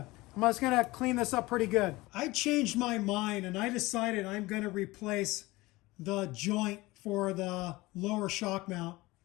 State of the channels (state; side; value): quieter; right; 20.6 dB